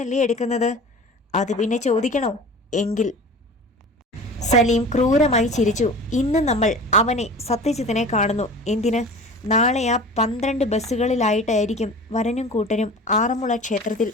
എടുക്കുന്നത്. അത് പിന്നെ ചോദിക്കണോ? എങ്കിൽ സലീം ക്രൂരമായി ചിരിച്ചു. ഇന്ന് നമ്മൾ അവനെ സത്യജിത്തിനെ കാണുന്നു. എന്തിന്? നാളെ ആ 12 ബസ്സുകളിലായിട്ടായിരിക്കും വരനും കൂട്ടരും ആറന്മുള ക്ഷേത്രത്തിൽ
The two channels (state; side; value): normal; both; correlation 0.39